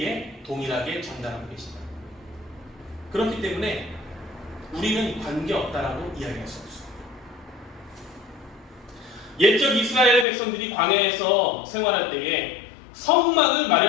동일하게 전달하고 계십니다. 그렇기 때문에 우리는 관계없다라고 이야기할 수 없습니다. 옛적 이스라엘 백성들이 광야에서 생활할 때에 성막을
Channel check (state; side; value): drops out; right; at 10.2 s